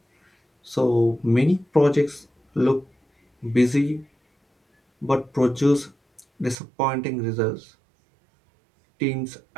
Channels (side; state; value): left; drops out; at 6.6 s